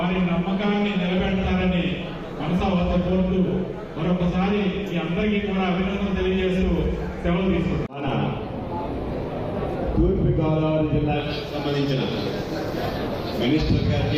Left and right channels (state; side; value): identical; both; correlation 1.00